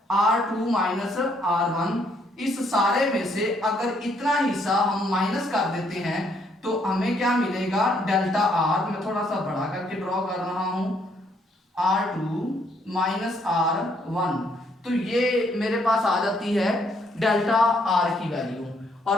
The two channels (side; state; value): both; normal; correlation 0.70